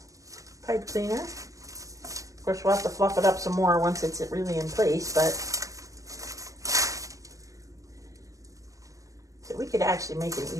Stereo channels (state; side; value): late; left; 0.16 ms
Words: pipe cleaner. Of course, we'll have to fluff it up some more once it's really in place, but so we could actually make an